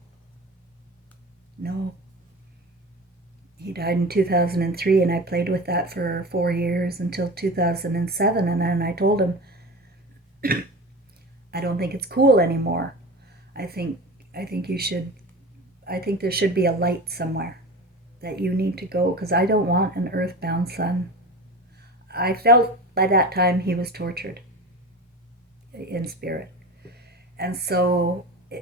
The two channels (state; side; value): normal; both; correlation 0.31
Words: No. He died in 2003, and I played with that for 4 years until 2007, and then I told him, I don't think it's cool anymore. I think you should, I think there should be a light somewhere that you need to go, because I don't want an earthbound son. I felt by that time he was tortured in spirit. And so